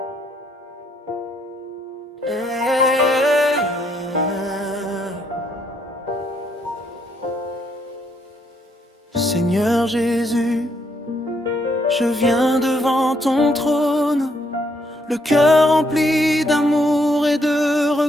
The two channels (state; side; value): normal; both; correlation 0.72